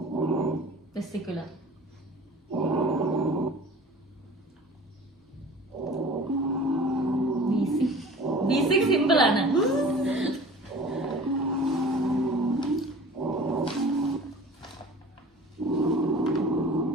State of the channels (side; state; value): both; normal; correlation 0.43